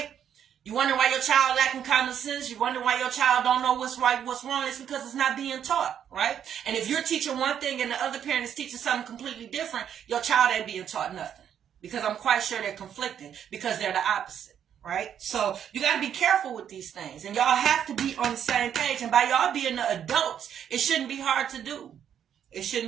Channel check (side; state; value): left; quieter; 9.1 dB